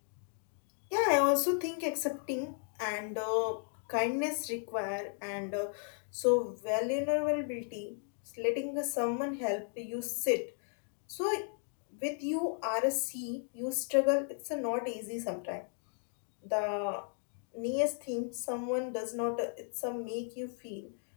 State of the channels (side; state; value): right; silent; 54 dB below the other